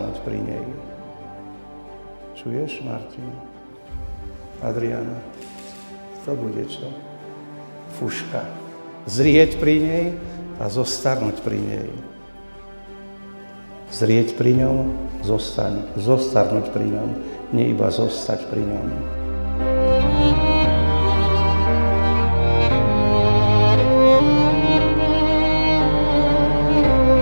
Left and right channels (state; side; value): inverted; both; correlation -1.00